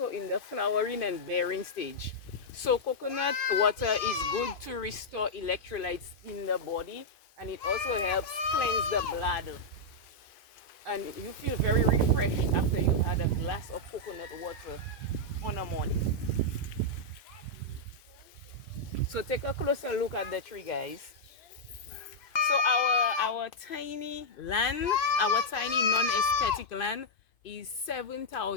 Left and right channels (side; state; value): right; late; 2.5 ms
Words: in the flowering and bearing stage. So coconut water is good to restore electrolytes in the body, and it also helps cleanse the bladder. And you feel very refreshed after you've had a glass of coconut water on a morning. So take a closer look at the tree, guys. So our tiny land, our tiny non-aesthetic land is